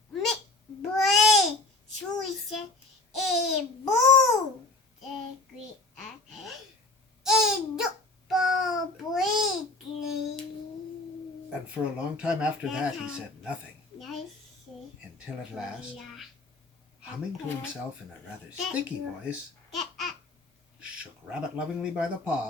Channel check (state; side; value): quieter; right; 3.1 dB